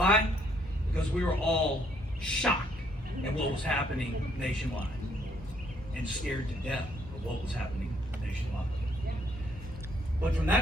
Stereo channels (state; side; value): normal; both; correlation 0.68